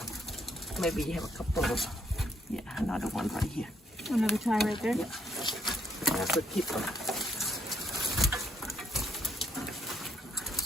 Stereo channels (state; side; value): normal; both; correlation 0.72